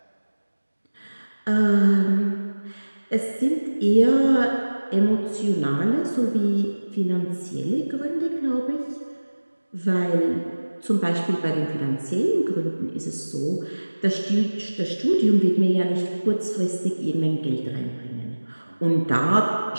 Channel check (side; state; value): both; inverted; correlation -1.00